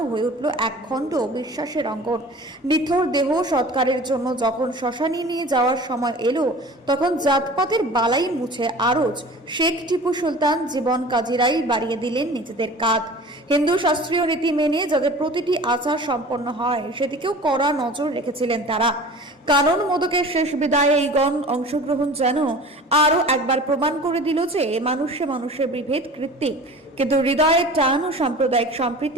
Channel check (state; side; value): normal; both; correlation 0.41